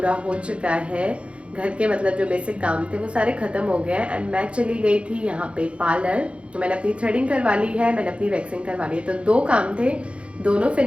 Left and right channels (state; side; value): late; left; 0.060 ms